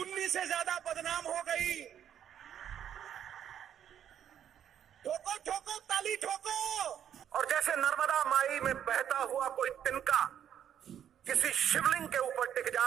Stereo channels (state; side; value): quieter; left; 9.6 dB